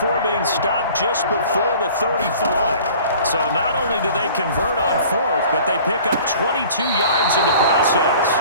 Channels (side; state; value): both; inverted; correlation -0.48